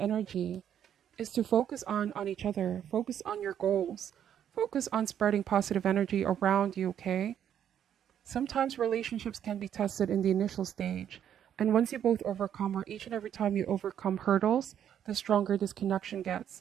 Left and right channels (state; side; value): quieter; left; 9.6 dB